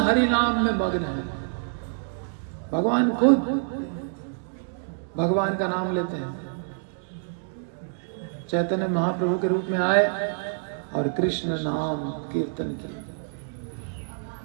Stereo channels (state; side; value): silent; left; digital silence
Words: नाम में मग्न है। भगवान खुद भगवान का नाम लेते हैं। चैतन्य महाप्रभु के रूप में आए और कृष्ण नाम कीर्तन किया।